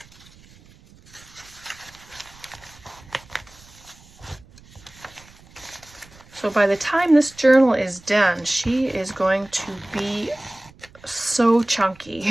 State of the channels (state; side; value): noise; right; rumble, 25 dB below the sound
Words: So by the time this journal is done, she is going to be so